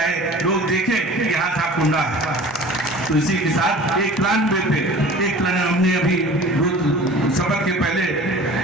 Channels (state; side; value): normal; both; correlation 0.42